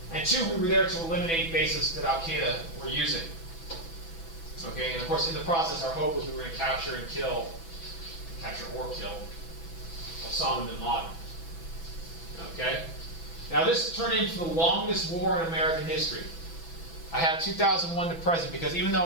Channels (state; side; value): late; right; 6.0 ms